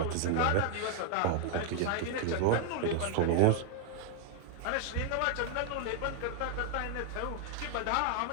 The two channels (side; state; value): both; different; correlation 0.00